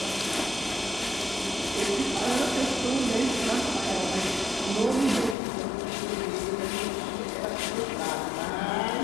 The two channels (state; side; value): drops out; right; at 5.4 s